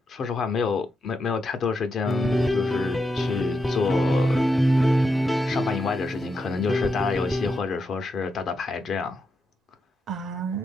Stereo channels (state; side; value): normal; both; correlation 0.84